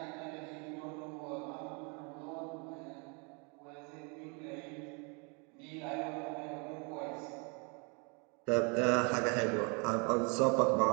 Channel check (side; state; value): left; quieter; 33.8 dB